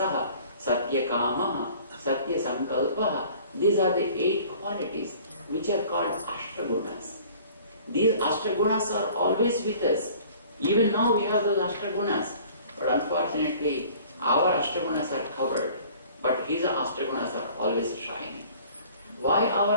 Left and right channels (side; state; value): both; inverted; correlation -0.50